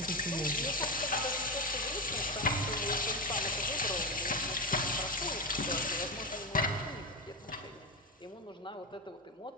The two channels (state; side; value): normal; both; correlation 0.15